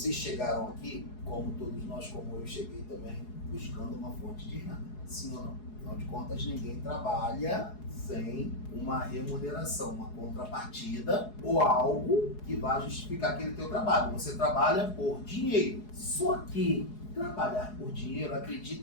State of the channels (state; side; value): late; right; 4.8 ms